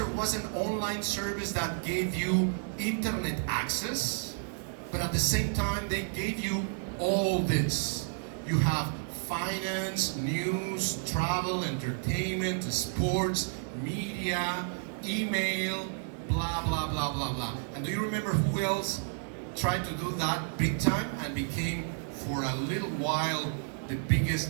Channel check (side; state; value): left; silent; 57 dB below the other